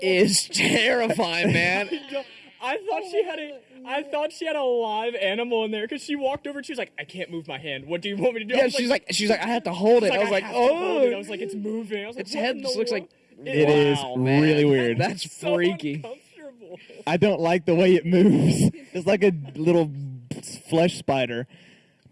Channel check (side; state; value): both; identical; correlation 1.00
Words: is terrifying, man. I thought she had a live animal in there because she walked over and she was like, I can't move my hand. What do you want me to do? Yeah, she's like, I have to hold it. I was like, oh. I was like, it's moving. I was like, its head just looks like. It is really weird. That's freaky. I don't like the way it moves. It's like a little flesh spider.